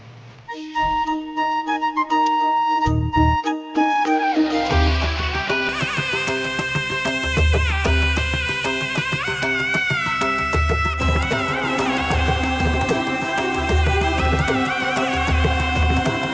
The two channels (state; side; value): identical; both; correlation 1.00